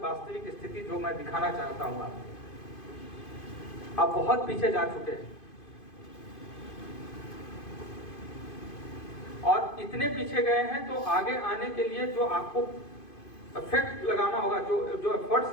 स्थिति जो मैं दिखाना चाहता हूं आपको। आप बहुत पीछे जा चुके हैं, और इतने पीछे गए हैं तो आगे आने के लिए जो आपको इफेक्ट लगाना होगा, जो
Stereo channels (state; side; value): late; right; 2.5 ms